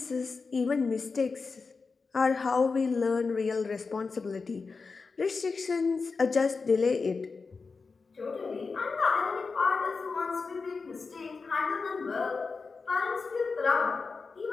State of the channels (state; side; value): quieter; right; 4.5 dB